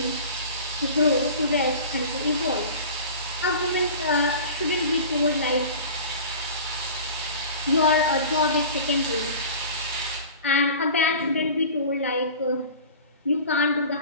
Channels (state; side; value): inverted; both; correlation -0.38